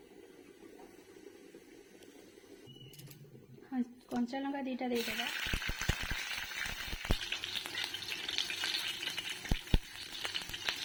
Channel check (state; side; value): identical; both; correlation 1.00